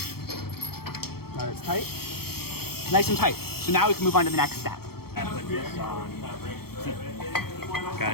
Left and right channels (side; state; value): right; late; 0.95 ms